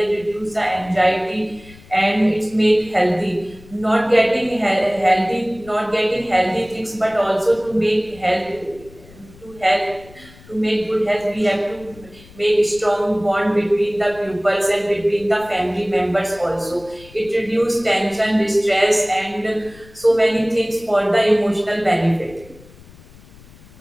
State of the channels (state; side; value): noise; left; rumble, 23 dB below the sound